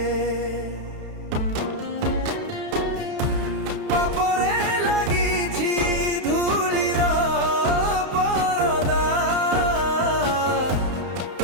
ପାପରେ ଲାଗିଛି ଧୂଳିର ପରଦା,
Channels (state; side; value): late; left; 31 ms